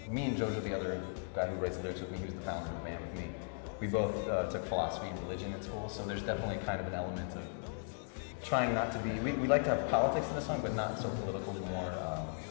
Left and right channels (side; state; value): right; silent; digital silence